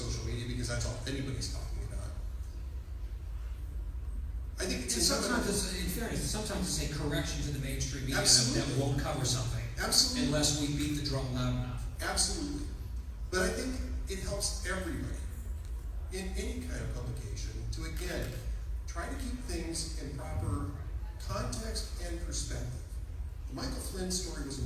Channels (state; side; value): identical; both; correlation 1.00